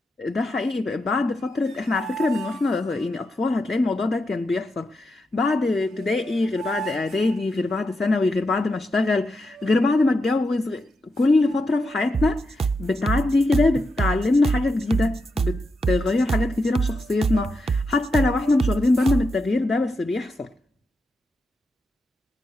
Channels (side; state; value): both; normal; correlation 0.85